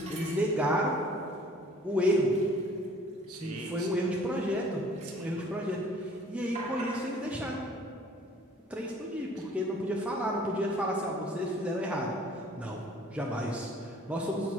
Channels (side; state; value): both; normal; correlation 0.53